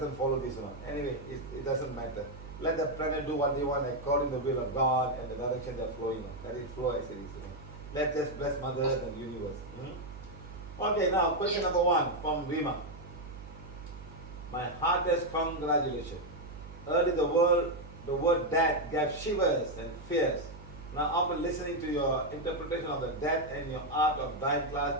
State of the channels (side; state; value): right; noise; hum, 15 dB below the sound